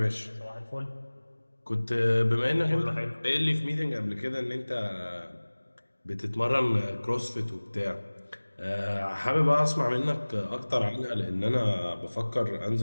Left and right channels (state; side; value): inverted; both; correlation -1.00